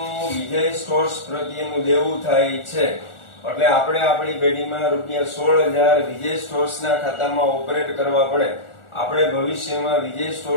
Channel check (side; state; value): right; late; 1.4 ms